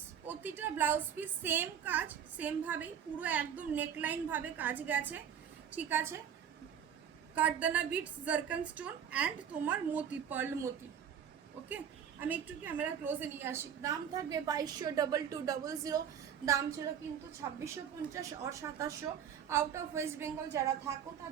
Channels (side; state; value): left; quieter; 8.4 dB